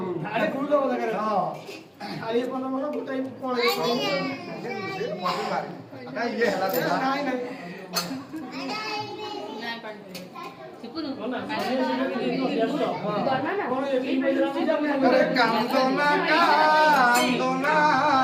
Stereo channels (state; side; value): identical; both; correlation 1.00